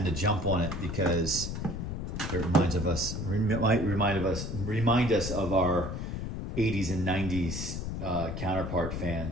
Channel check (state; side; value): noise; left; rumble, 4 dB below the sound